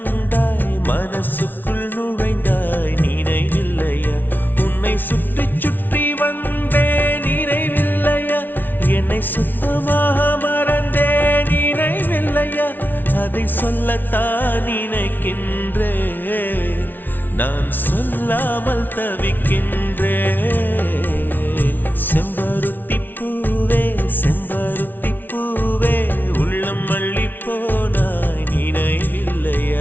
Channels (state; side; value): late; right; 0.089 ms